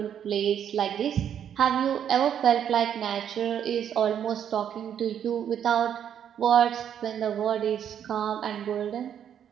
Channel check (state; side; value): quieter; left; 9.2 dB